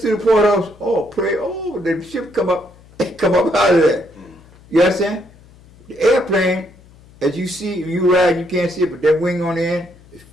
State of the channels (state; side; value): noise; left; hum, 25 dB below the sound